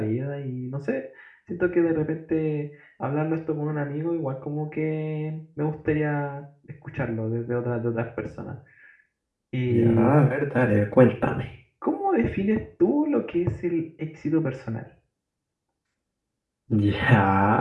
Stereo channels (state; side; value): identical; both; correlation 1.00